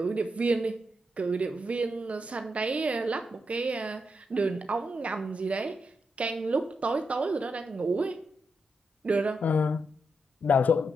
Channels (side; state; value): both; normal; correlation 0.84